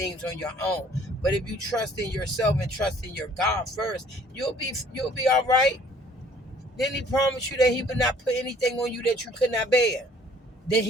on your own. But if you trust in yourself and trust in your God first, you'll be all right. Didn't he promise you that he would not put anything on you that you could not bear? Then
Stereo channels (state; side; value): normal; both; correlation 0.57